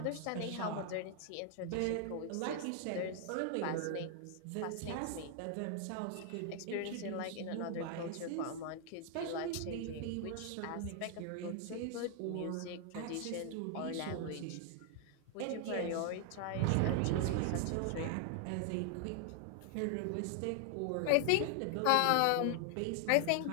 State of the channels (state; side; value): different; both; correlation 0.00